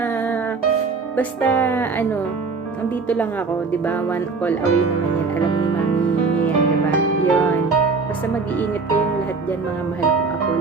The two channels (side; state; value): left; quieter; 4.4 dB